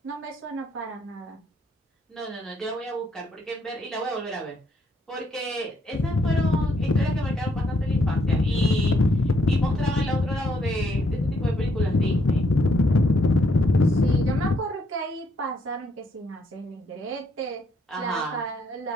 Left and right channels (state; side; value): normal; both; correlation 0.72